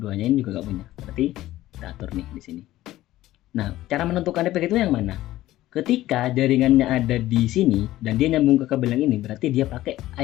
ini juga enggak punya. Berarti kita atur nih di sini. Nah, cara menentukan IP gateway yang mana? Ketika jaringannya ada di sini dan dia nyambung ke kabel yang ini, berarti dia pakai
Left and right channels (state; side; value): quieter; right; 15.4 dB